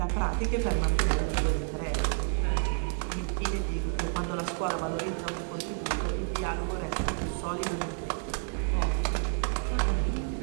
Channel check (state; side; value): silent; left; digital silence